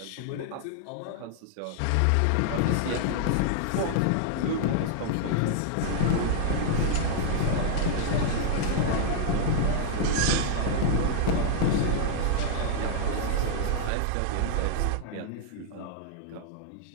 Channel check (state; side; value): different; both; correlation -0.01